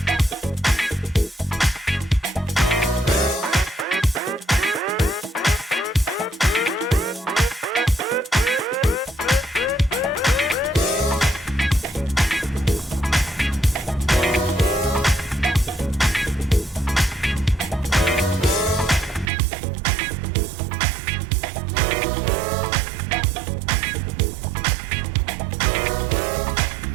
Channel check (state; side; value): drops out; left; at 19.2 s